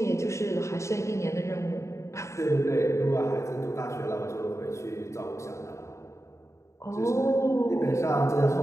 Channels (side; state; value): right; late; 0.14 ms